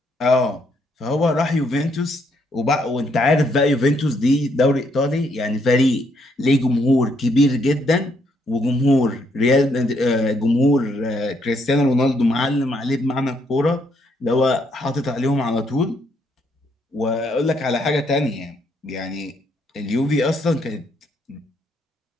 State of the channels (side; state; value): both; normal; correlation 0.73